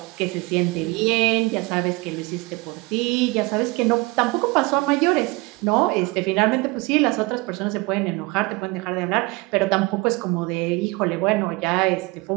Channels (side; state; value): left; quieter; 24.5 dB